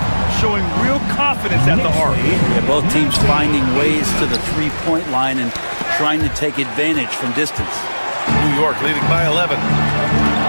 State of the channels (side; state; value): both; inverted; correlation -1.00